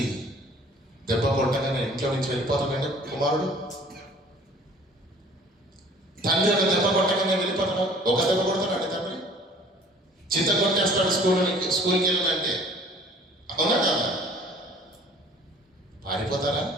దెబ్బ కొట్టగానే ఇంట్లో నుంచి వెళ్ళిపోతాడండి కుమారుడు. తండ్రి ఒక దెబ్బ కొట్టగానే వెళ్ళిపోతాడు. ఒక దెబ్బ కొడతాడండి తండ్రి, చింత కొట్టేస్తాడు స్కూల్కి వెళ్ళాలంటే. అవునా కదా? పారిపోతారా?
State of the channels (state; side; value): normal; both; correlation 0.51